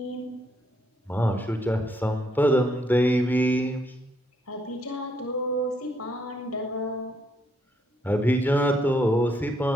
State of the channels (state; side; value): normal; both; correlation 0.74